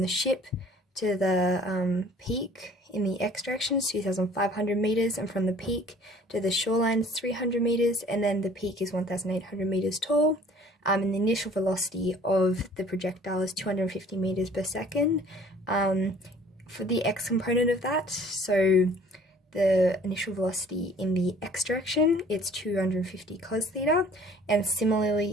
ship to the peak in the x direction is 2,500 meters, and from the peak to the shoreline is 300 meters, and then the peak is 1,800 meters tall. And the initial velocity of the projectile is 250 meters per second. For the x component of that, so the initial velocity in the x direction, it's 250 cos theta, and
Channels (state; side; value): normal; both; correlation 0.52